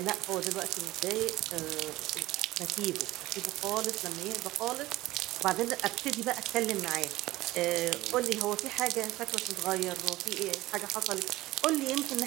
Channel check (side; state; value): left; quieter; 17.7 dB